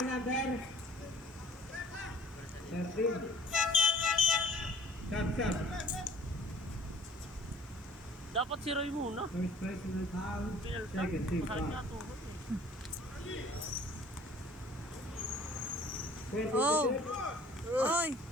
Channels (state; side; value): noise; right; hiss, 29 dB below the sound